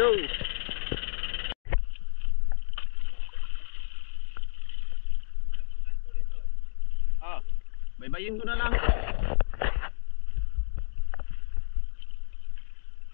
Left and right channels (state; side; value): silent; right; digital silence